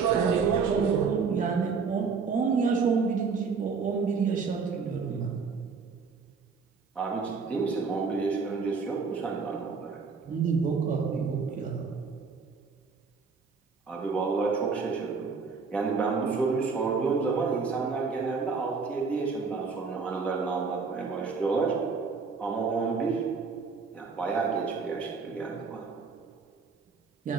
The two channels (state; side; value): quieter; left; 5.1 dB